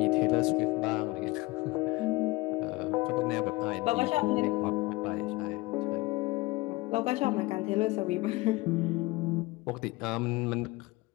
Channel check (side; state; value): right; quieter; 21.5 dB